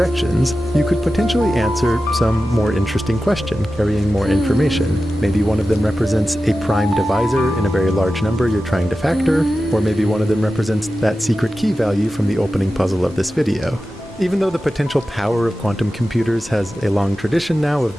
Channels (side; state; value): both; normal; correlation 0.93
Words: you could potentially answer some more interesting question, carrying more information. Maybe one of them represents a prime divisor in a very large number you're trying to factor, or maybe one of them represents that secret key value from the opening puzzle of this video. Even though the potential power of quantum computers has a long tradition now of